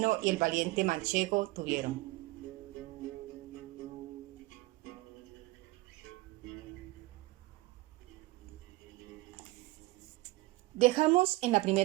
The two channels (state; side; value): quieter; left; 21.0 dB